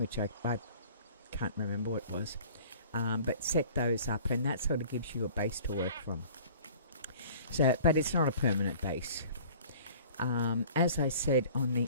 I can't remember what it was, but set those up, and that sort of gives you a base to work from. So, but it's not a permanent base. As I said on the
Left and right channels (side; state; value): both; inverted; correlation -0.47